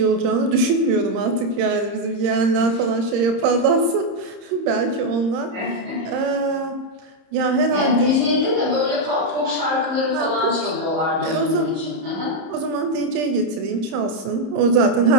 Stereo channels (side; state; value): left; late; 30 ms